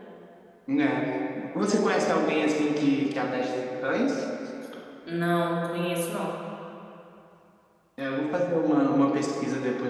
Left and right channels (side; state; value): both; identical; correlation 1.00